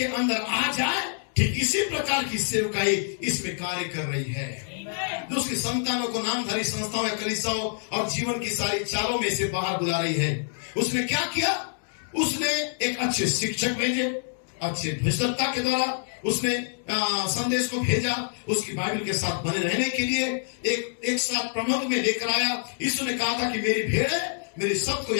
अंदर आ जाए। ठीक इसी प्रकार की सेवकाई इसमें कार्य कर रही है, जो उसकी संतानों को नामधारी संस्थाओं या कलीसियाओं और जीवन की सारी चालों में से बाहर बुला रही है। उसने क्या किया? उसने एक अच्छे शिक्षक भेजे, अच्छे भ्रष्टता के द्वारा उसने संदेश को भेजा, उसकी बाइबल के साथ बने रहने के लिए एक साथ प्रबंध में लेकर आया। यीशु ने कहा था कि मेरी भेड़ मेरे शब्द को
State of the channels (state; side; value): silent; right; 61 dB below the other